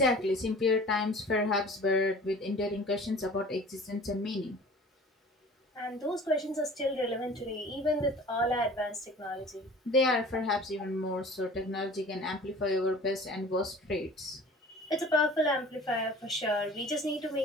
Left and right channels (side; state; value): both; normal; correlation 0.45